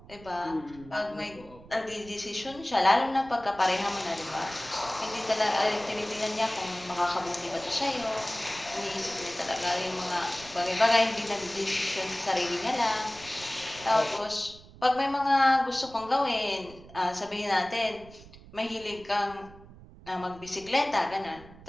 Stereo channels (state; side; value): noise; right; rumble, 20 dB below the sound